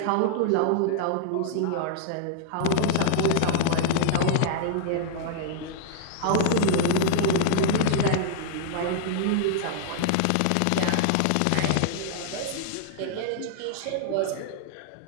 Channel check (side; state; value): both; different; correlation -0.01